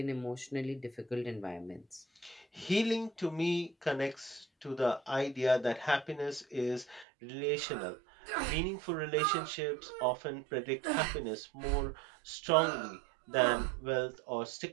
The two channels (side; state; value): left; drops out; at 7.1 s